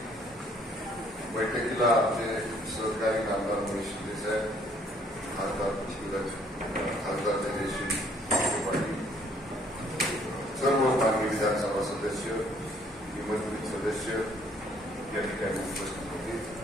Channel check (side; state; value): both; normal; correlation 0.62